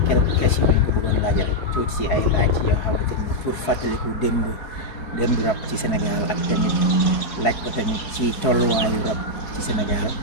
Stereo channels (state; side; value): late; right; 4.6 ms